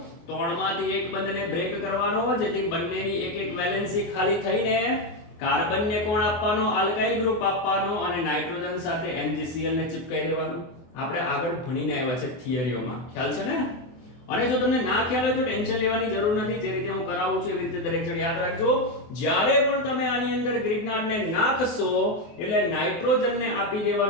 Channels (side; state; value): right; late; 24 ms